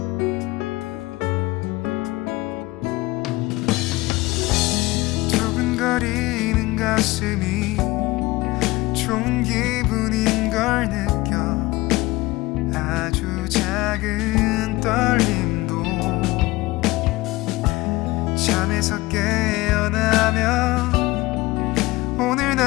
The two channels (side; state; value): right; quieter; 20.4 dB